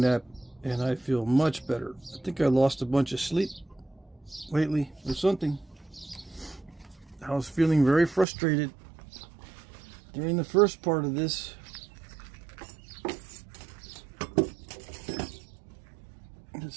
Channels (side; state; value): left; drops out; at 8.2 s